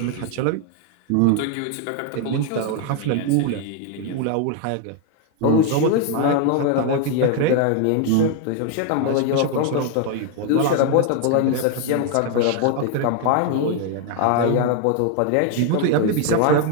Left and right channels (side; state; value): both; different; correlation 0.00